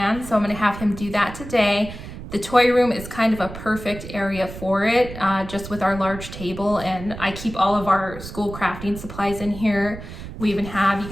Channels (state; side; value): noise; right; rumble, 12 dB below the sound